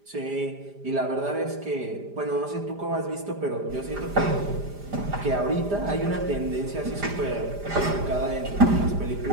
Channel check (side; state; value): left; late; 5.0 ms